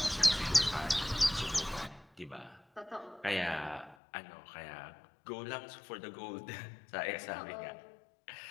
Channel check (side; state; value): right; drops out; at 4.0 s